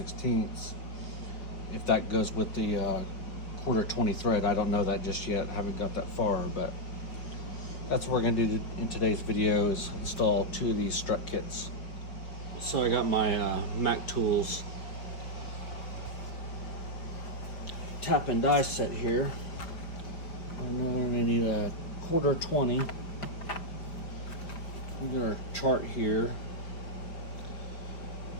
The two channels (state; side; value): late; right; 5.1 ms